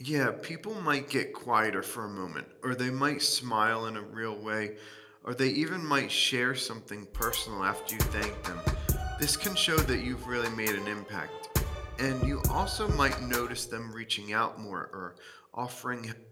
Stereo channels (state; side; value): identical; both; correlation 1.00